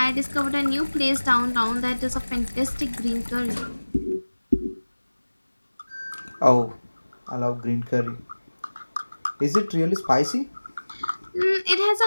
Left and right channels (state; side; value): inverted; both; correlation -1.00